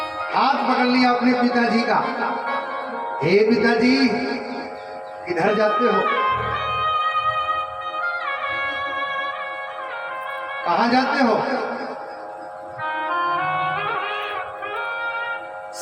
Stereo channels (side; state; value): both; identical; correlation 1.00